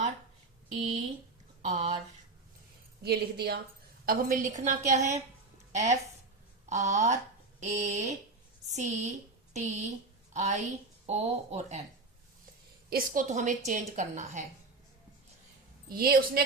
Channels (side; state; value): left; quieter; 3.5 dB